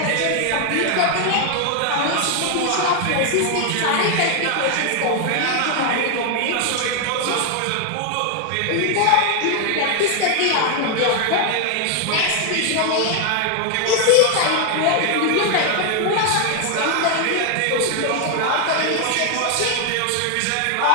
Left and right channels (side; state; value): both; different; correlation 0.00